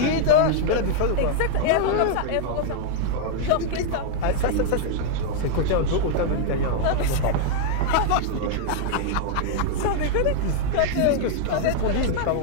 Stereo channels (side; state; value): both; different; correlation -0.01